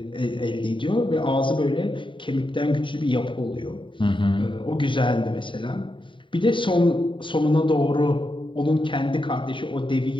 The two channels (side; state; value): right; late; 0.24 ms